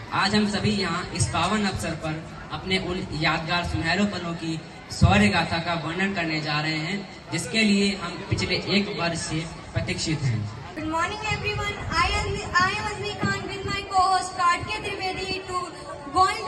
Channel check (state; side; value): identical; both; correlation 1.00